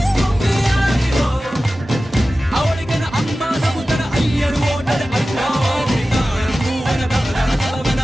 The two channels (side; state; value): both; normal; correlation 0.95